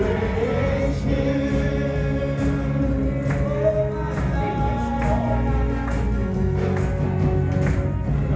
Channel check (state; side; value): identical; both; correlation 1.00